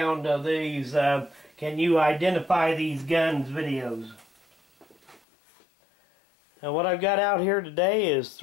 of these can you identify these guns videos. Now what I've got out here today is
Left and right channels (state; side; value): drops out; right; at 5.2 s